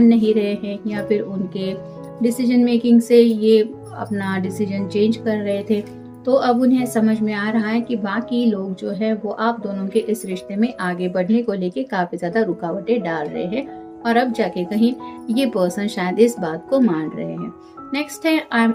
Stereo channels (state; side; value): identical; both; correlation 1.00